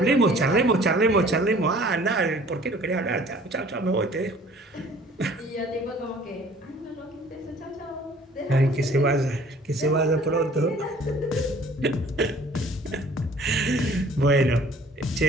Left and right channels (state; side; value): normal; both; correlation 0.53